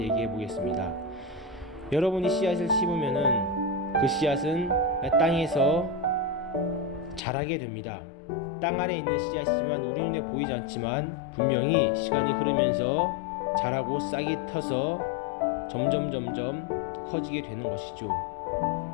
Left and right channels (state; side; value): drops out; right; at 7.2 s